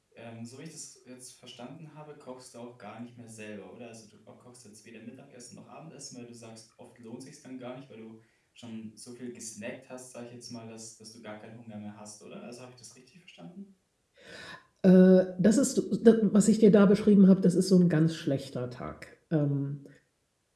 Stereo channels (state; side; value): identical; both; correlation 1.00